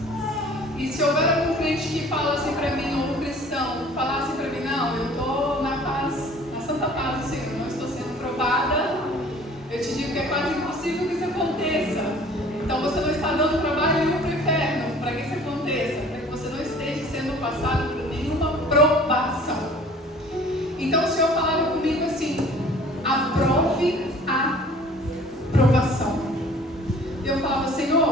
E se houver algum crente que fala assim para mim, ou um cristão, falar assim para mim, não, eu estou na paz, na santa paz do Senhor, não estou sendo provada, eu te digo que é quase impossível que isso aconteça. Então você não está dando trabalho nenhum para o inferno, para que isso aconteça, para que você não esteja sendo passado por nenhuma provação. Então o Senhor falava comigo assim, aprove a provação. Eu falava,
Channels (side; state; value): both; normal; correlation 0.50